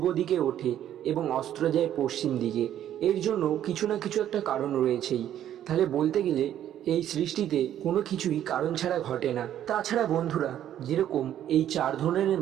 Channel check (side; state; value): left; quieter; 11.1 dB